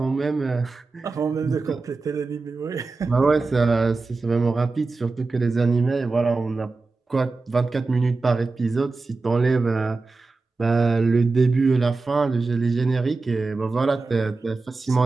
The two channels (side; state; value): left; quieter; 3.8 dB